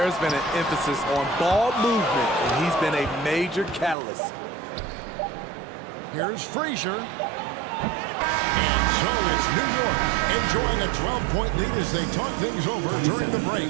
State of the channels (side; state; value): left; drops out; at 4.0 s